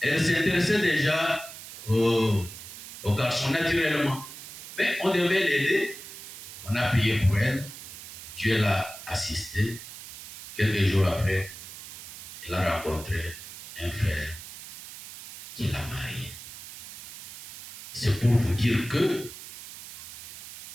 elle s'intéressait déjà aux garçons naturellement. Mais on devait l'aider. On a prié pour elle. Dieu l'a assistée. Quelques jours après, elle a rencontré un frère qui l'a mariée. C'est pour vous dire que,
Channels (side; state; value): right; noise; hiss, 13 dB below the sound